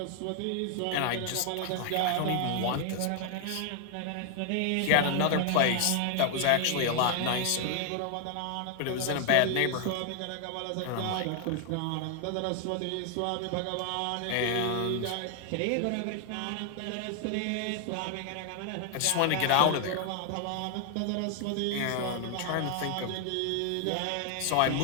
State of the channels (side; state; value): both; different; correlation 0.00